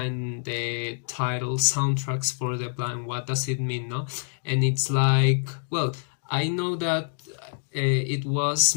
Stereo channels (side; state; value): right; silent; digital silence